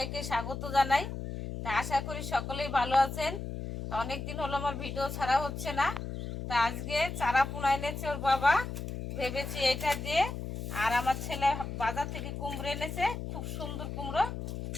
স্বাগত জানাই। তা আশা করি সকলেই ভালো আছেন। তা অনেক দিন হলো আমার ভিডিও ছাড়া হচ্ছে না। তা আজকে চারা পোনা এনেছে ওর বাবা, ভেবেছি এটা দিয়ে। আর আমার ছেলে বাজার থেকে কুমড়ো এনেছে, খুব সুন্দর কুমড়ো।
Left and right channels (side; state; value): left; noise; hum, 6 dB below the sound